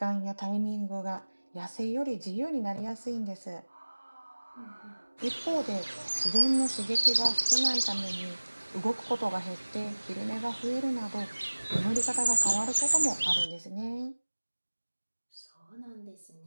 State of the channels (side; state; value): both; inverted; correlation -1.00